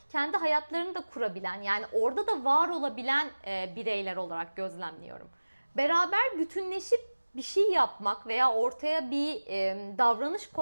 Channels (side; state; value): both; inverted; correlation -1.00